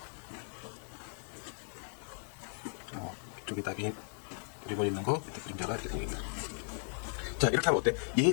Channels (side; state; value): right; silent; 54 dB below the other